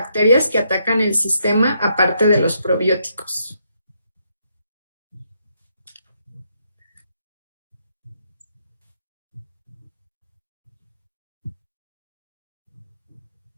que atacan el sistema aparte de los probióticos.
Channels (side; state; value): both; inverted; correlation -0.76